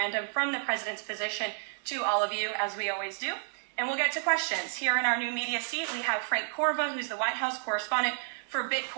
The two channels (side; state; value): left; silent; 57 dB below the other